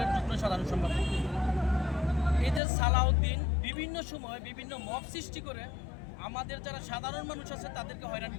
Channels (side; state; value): right; drops out; at 2.6 s